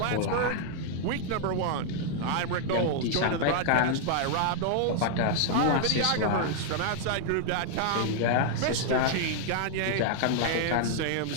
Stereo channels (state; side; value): different; both; correlation 0.00